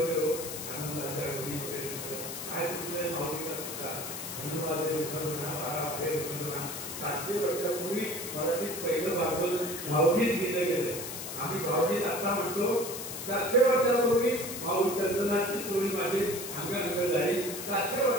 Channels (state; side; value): noise; left; hiss, 7 dB below the sound